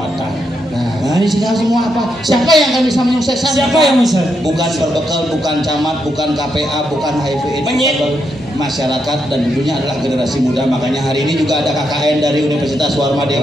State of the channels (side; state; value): both; normal; correlation 0.81